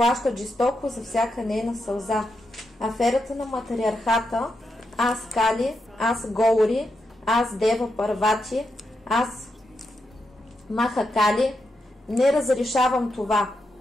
жестоко за всяка нейна сълза. Аферата на матриархата, аз Кали, аз Гаури, аз Дева Парвати, аз Махакали, не разрешавам това.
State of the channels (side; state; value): both; normal; correlation 0.85